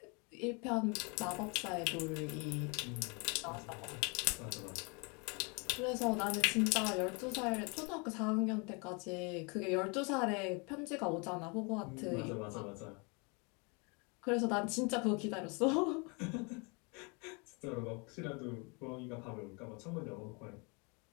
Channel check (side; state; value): right; quieter; 31.8 dB